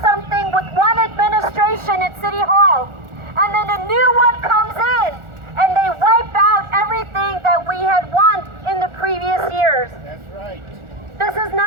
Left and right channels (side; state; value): left; late; 1.4 ms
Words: something with one administration at City Hall, and then a new one comes in and they wipe out everything that we had won in the previous years. That's right. This is